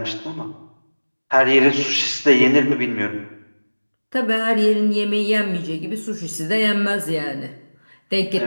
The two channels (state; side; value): inverted; both; correlation -1.00